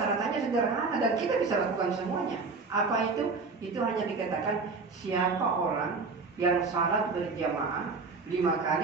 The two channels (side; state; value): left; quieter; 4.3 dB